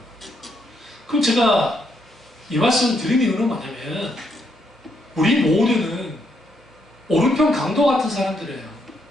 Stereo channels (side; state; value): both; normal; correlation 0.76